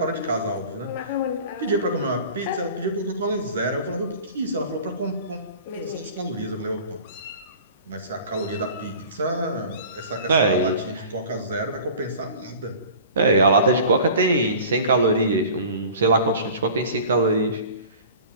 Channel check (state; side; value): inverted; both; correlation -0.43